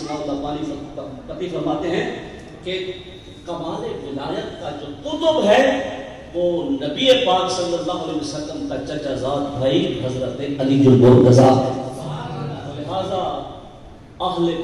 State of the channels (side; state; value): both; identical; correlation 1.00